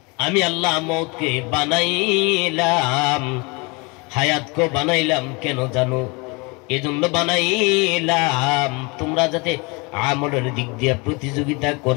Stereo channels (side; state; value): right; quieter; 28.4 dB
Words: আমি আল্লাহ মওতকে বানাইলাম, হায়াতকে বানাইলাম, কেন জানো? এজন্য বানাইলাম তোমরা যাতে আমলের দিক দিয়ে প্রতিযোগিতা